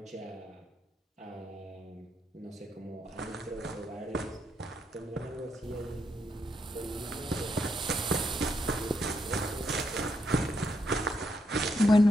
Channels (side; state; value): both; normal; correlation 0.79